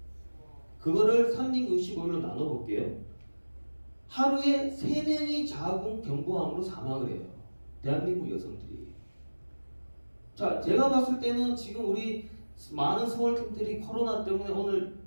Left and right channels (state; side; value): inverted; both; correlation -1.00